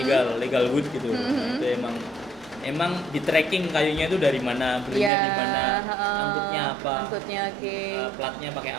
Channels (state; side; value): drops out; left; at 5.1 s